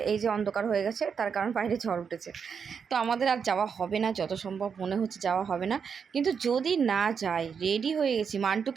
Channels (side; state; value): left; quieter; 6.5 dB